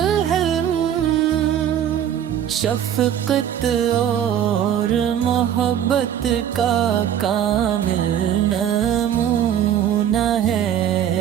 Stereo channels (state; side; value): quieter; left; 9.9 dB